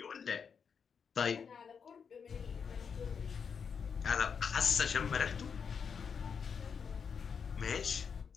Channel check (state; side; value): quieter; right; 6.4 dB